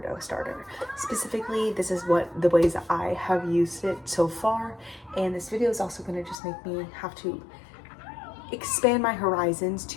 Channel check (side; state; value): right; drops out; at 6.4 s